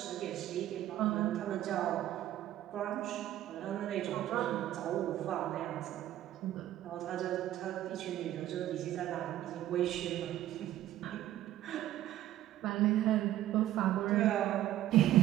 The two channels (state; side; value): quieter; left; 13.3 dB